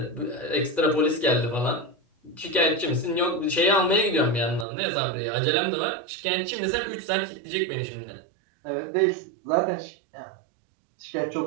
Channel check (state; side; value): drops out; left; at 4.7 s